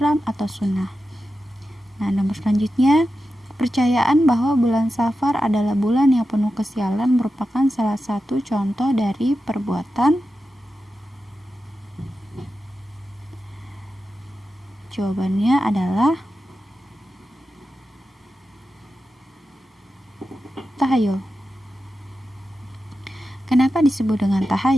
atau sunnah. Nah, nomor selanjutnya, kepercayaan bahwa bulan Safar adalah bulan yang penuh kesialan merupakan salah satu contoh dari perbuatan. Jawabannya adalah tahayul. Kenapa disebut dengan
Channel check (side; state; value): both; normal; correlation 0.91